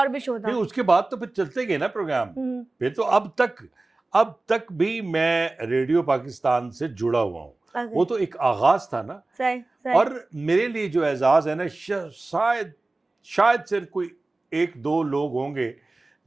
भी शो नहीं, था? उसके बाद तो फिर चलते गए ना प्रोग्राम। हुँ, फिर तो अब तक भी मैं रेडियो पाकिस्तान से जुड़ा हुआ हूँ। ओके। वो तो एक आगाज़ था ना। सही, सही। और मेरे लिए जो एज़ाज़ है ना, शायद शायद सिर्फ़ कोई 1-2 लोग होंगे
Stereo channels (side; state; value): left; quieter; 3.1 dB